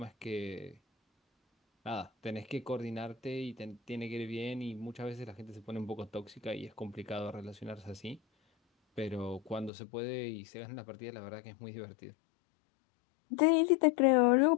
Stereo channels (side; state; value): right; drops out; at 9.7 s